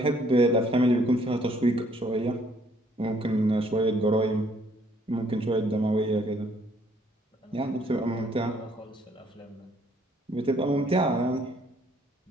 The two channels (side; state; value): both; normal; correlation 0.64